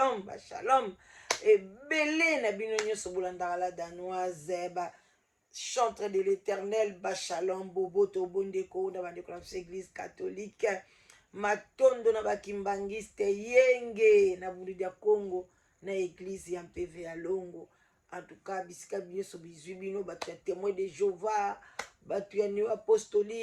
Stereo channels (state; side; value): identical; both; correlation 1.00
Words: ba shalom. Et belé na bino nyoso bolandaka la danoise, ba chantre de l'éternel, ba shalom, bobo to bondeko, na bandeko na église catholique, matondo na ba kimbangiste, yenge, na bulu dia Congo, na église ya MPV ya Longo. En tout cas, bisika biso bizwi bino, bato ya témoin de Jéhovah, bato ya néo